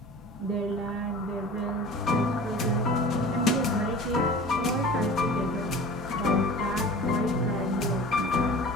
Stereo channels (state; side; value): normal; both; correlation 0.40